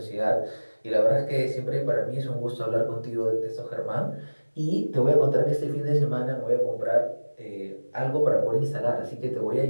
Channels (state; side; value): inverted; both; correlation -1.00